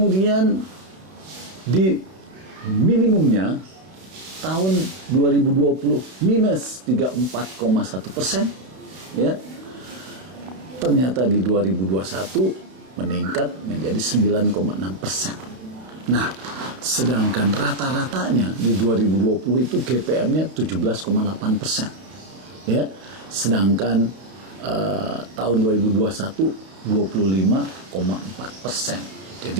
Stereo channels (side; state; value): left; late; 32 ms